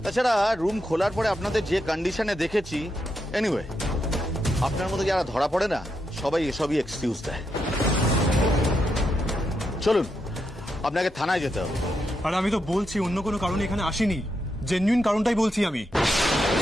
তাছাড়া রুম খোলার পরে আপনাদের যে কন্ডিশনে দেখেছি, এনিওয়ে আপনার মতো যারা ধরা পড়ে না সবাই এসবই এক্সকিউজ দেয়। চলুন, আপনাকে থানায় যেতে হবে। আর আমি তো বলছি অন্য কোনো কারণে এখানে আসিনি, জেনুইন কারণটাই বলছি আমি।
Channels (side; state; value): both; normal; correlation 0.83